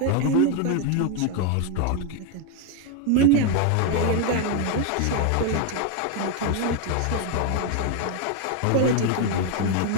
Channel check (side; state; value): both; different; correlation 0.01